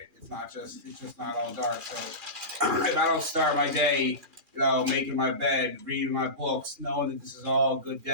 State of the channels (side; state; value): left; late; 2.4 ms